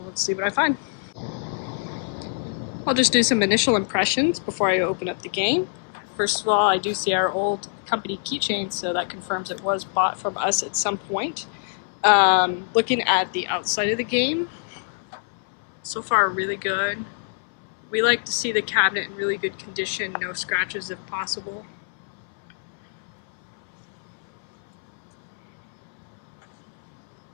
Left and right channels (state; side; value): silent; right; 60 dB below the other